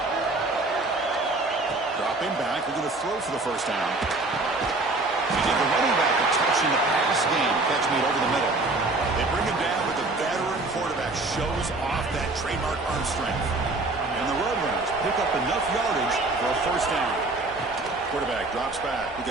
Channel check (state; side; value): quieter; left; 3.1 dB